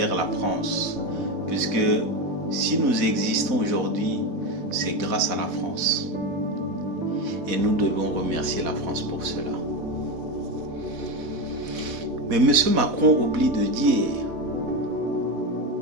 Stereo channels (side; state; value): left; late; 4.1 ms